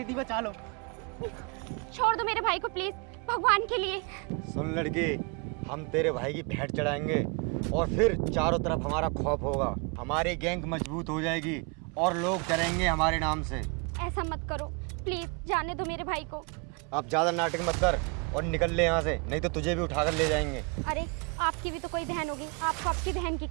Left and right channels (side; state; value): left; quieter; 33.6 dB